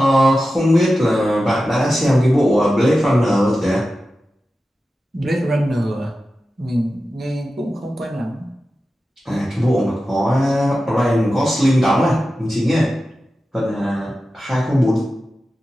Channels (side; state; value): both; normal; correlation 0.93